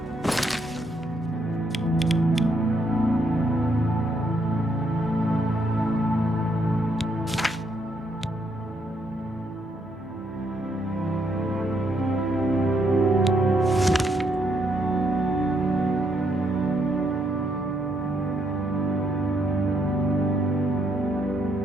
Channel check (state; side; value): normal; both; correlation 0.75